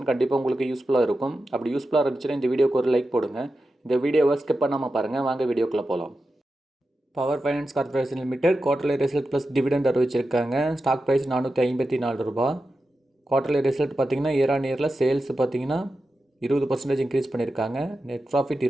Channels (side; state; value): both; normal; correlation 0.91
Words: கண்டிப்பாக உங்களுக்கு யூஸ்ஃபுல்லாக இருக்கும். அப்படி யூஸ்ஃபுல்லாக இருந்துச்சுன்னா இந்த வீடியோக்கு ஒரு லைக் போடுங்க. இந்த வீடியோவை ஸ்கிப் பண்ணாமல் பாருங்கள். வாங்க வீடியோக்குள்ளே போகலாம். Power finance corporation limited quarterly result plus dividend அறிவிச்சிருக்காங்க. ஸ்டாக் ப்ரைஸ் 454 ரூபா. குவார்டர்லி ரிசல்ட் பார்த்தீங்கன்னா இயர் ஆன் இயரில் சேல்ஸ் பார்த்தீங்கன்னா 20% இன்க்ரீஸ் பண்ணியிருக்காங்க. நெட் ப்ராஃபிட்